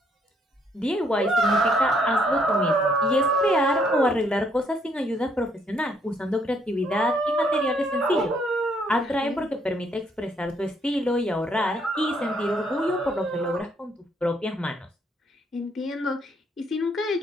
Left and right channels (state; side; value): normal; both; correlation 0.69